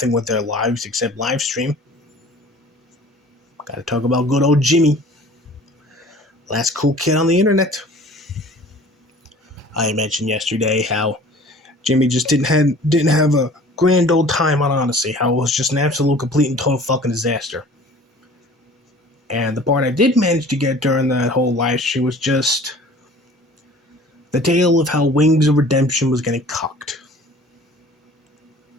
with their lives except live stream, gotta talk about good old Jimmy. Last cool kid on the internet. I mentioned yesterday how Jimmy just didn't have a grand old time on Odyssey. How it was just an absolute, complete, and total fucking disaster. And the part I did manage to get during that whole live stream was just the tale of how Wings of Redemption was getting cucked.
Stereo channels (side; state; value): both; normal; correlation 0.47